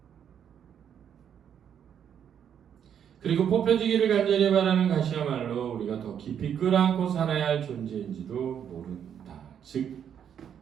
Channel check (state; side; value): quieter; left; 8.6 dB